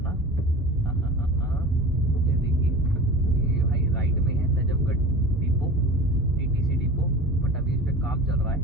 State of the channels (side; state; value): both; normal; correlation 0.35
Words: ये देखिए, ये भाई राइट में है Najafgarh depot, TTC depot. But अभी इस पर काम चल रहा है,